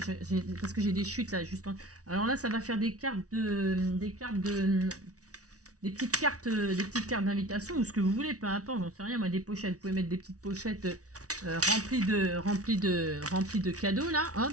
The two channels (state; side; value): late; left; 0.67 ms